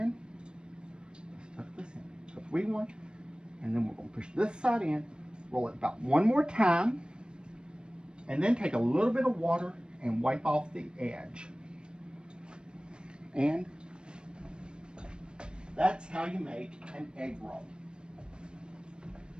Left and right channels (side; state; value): left; late; 0.053 ms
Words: Let's tuck this in. So 3, 1, and then we're going to push this side in, roll it about 1 more time, and then take a little bit of water and wipe off the edge. And that's how you make an egg roll.